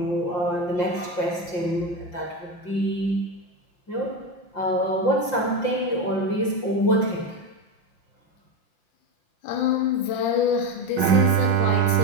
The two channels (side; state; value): right; late; 5.8 ms